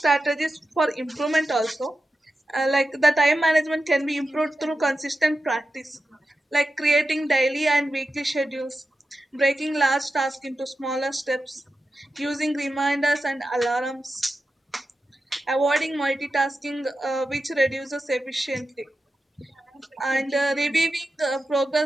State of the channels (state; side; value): normal; both; correlation 0.91